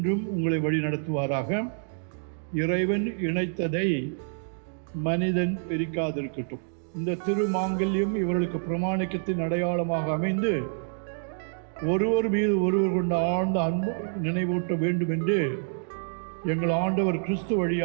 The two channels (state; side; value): silent; left; digital silence